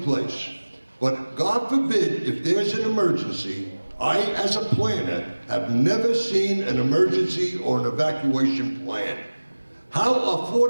place, but God forbid if there's an emergency, I, as a planner, have never seen an emergency or an evacuation plan. How are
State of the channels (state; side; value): inverted; both; correlation -1.00